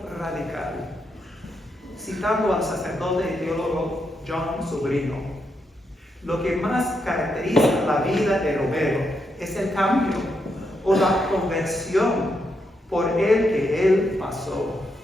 radical. Citando al sacerdote y teólogo John Sobrino, lo que más caracteriza la vida de Romero es el cambio o la conversión por el que él pasó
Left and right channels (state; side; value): normal; both; correlation 0.81